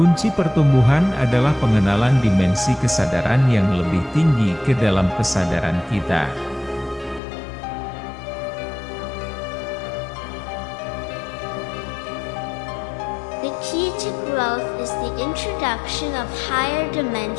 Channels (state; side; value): drops out; right; at 7.2 s